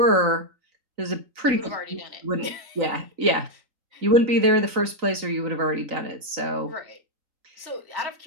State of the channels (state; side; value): late; left; 3.9 ms